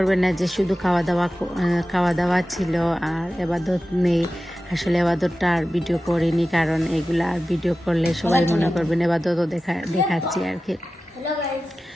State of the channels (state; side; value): normal; both; correlation 0.94